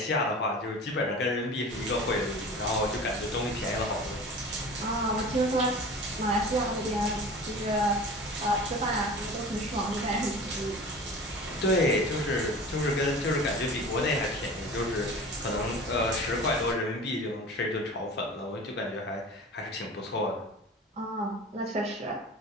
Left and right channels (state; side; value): normal; both; correlation 0.38